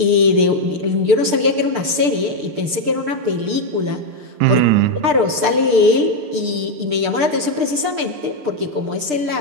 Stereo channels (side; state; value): left; late; 6.7 ms